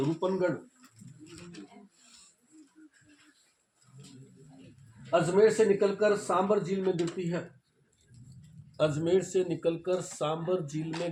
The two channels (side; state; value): both; identical; correlation 1.00